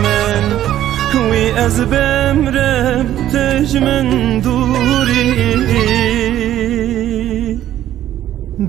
من وی از بمرم تجمن دوری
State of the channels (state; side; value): quieter; left; 12.3 dB